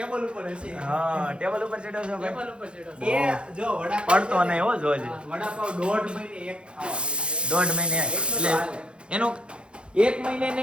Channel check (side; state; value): left; late; 0.056 ms